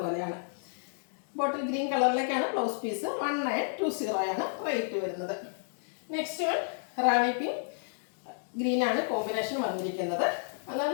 പോലെയാണ്. ബോട്ടിൽ ഗ്രീൻ കളറിലേക്കാണ് ബ്ലൗസ് പീസ്. 1920 റേറ്റ് വരുന്നത്. നെക്സ്റ്റ് വൺ റാണി പിങ്ക് ഗ്രീനാണ് കോമ്പിനേഷൻ വന്നിരിക്കുന്നത്.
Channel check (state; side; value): silent; right; digital silence